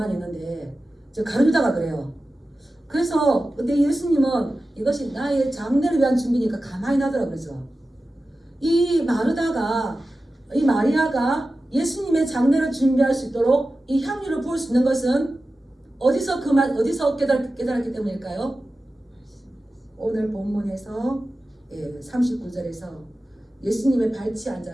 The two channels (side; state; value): both; normal; correlation 0.94